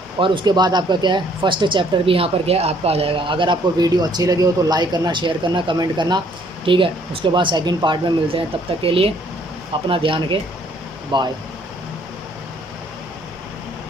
और उसके बाद आपका क्या है फर्स्ट चैप्टर भी यहाँ पर क्या है आपका आ जाएगा। अगर आपको वीडियो अच्छी लगी हो तो लाइक करना, शेयर करना, कमेंट करना। ठीक है, उसके बाद सेकंड पार्ट में मिलते हैं, तब तक के लिए अपना ध्यान रखें, बाय।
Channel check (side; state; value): both; normal; correlation 0.63